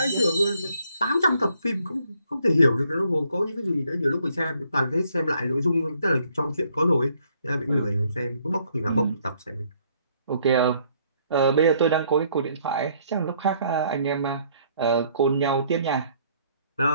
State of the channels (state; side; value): inverted; both; correlation -0.66